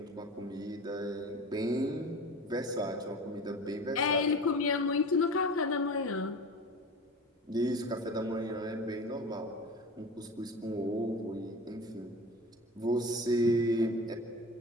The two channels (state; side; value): normal; both; correlation 0.34